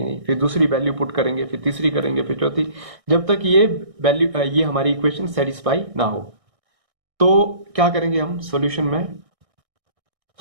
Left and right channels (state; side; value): late; left; 1.6 ms